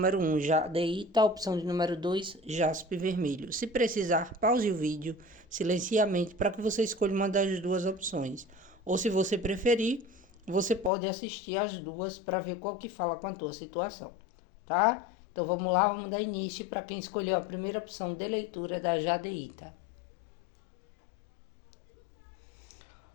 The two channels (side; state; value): right; drops out; at 10.9 s